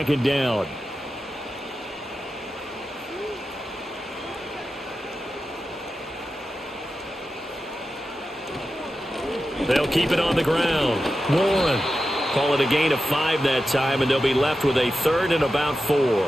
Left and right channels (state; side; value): normal; both; correlation 0.91